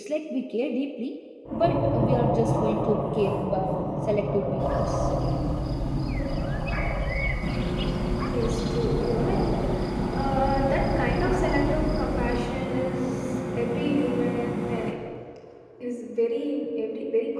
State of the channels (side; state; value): both; identical; correlation 1.00